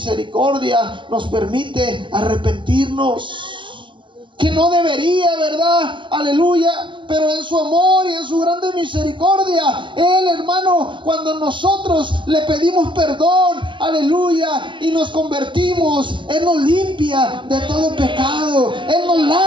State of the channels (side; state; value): left; late; 0.24 ms